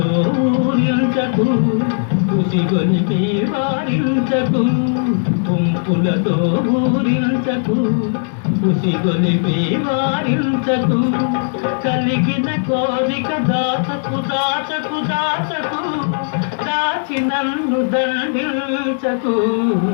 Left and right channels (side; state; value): right; silent; digital silence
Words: ఊరించకు, ఉసిగొలిపి వారించకు. పుంపులతో ఊరించకు, ఉసిగొలిపి వారించకు. కలిగిన కోరిక దాచకు దాచకు దాచకు, దాచి నన్ను దండించకు.